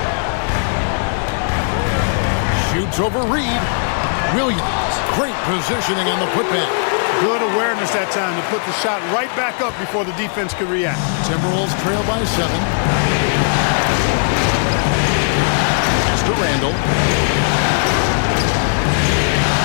Shoots over Reed. Williams, great positioning on the putback. Good awareness that time to put the shot right back up before the defense could react. Timberwolves trail by 7. Pass to Randle.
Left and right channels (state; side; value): silent; right; digital silence